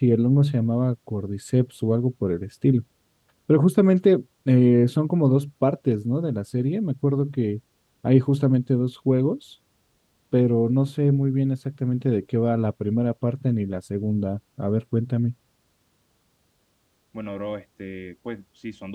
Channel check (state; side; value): identical; both; correlation 1.00